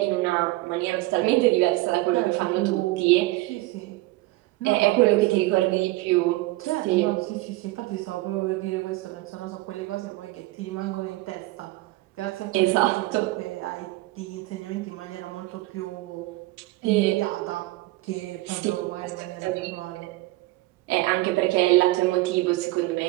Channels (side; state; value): left; quieter; 19.7 dB